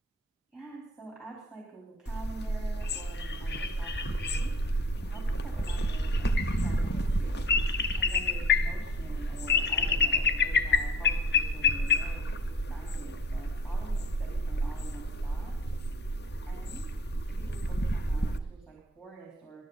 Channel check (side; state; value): both; normal; correlation 0.45